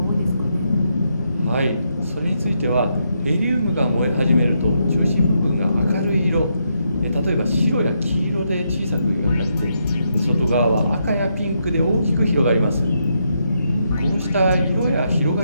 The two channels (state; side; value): inverted; both; correlation -0.80